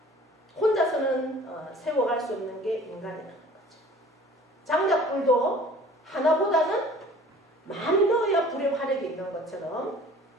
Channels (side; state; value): both; normal; correlation 0.48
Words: 혼자서는 세워갈 수 없는 게 인간이라는 거죠. 장작불도 하나보다는 많이 넣어야 불의 화력이 있는 것처럼